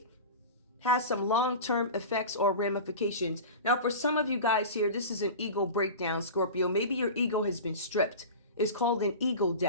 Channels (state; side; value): inverted; both; correlation -0.31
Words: has some long-term effects or ramifications. Now, for some of you guys here, this is an ego breakdown, Scorpio. Maybe your ego has been stripped. It's called an ego